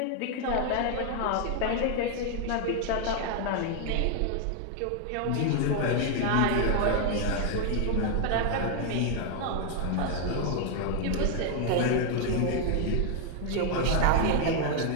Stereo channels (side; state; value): both; different; correlation 0.00